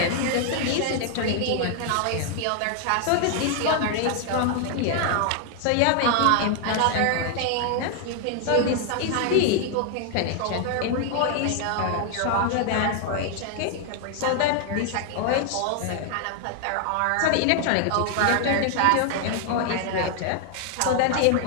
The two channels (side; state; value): both; different; correlation 0.00